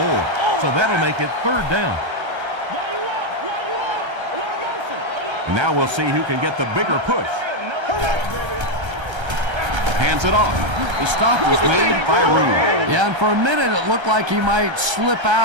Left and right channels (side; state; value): left; late; 1.3 ms